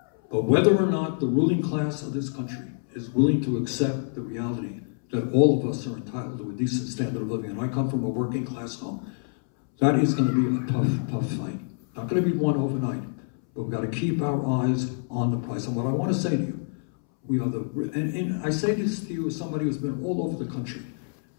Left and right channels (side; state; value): right; silent; 61 dB below the other